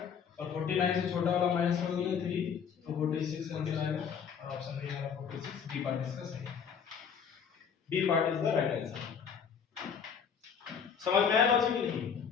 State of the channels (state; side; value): quieter; right; 7.1 dB